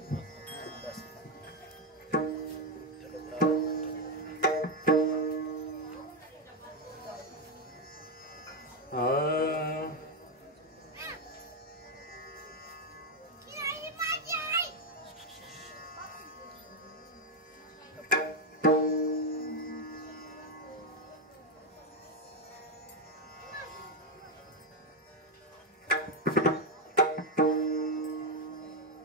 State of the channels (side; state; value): both; normal; correlation 0.06